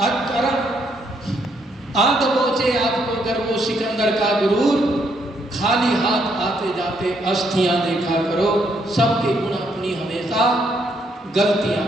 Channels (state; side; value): normal; both; correlation 0.73